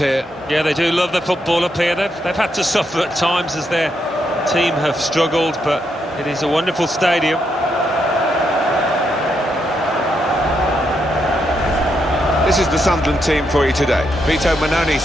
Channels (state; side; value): normal; both; correlation 0.80